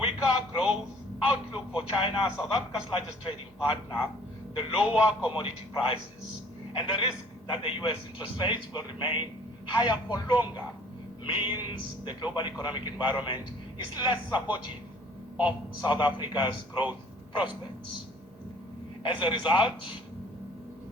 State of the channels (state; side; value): normal; both; correlation 0.54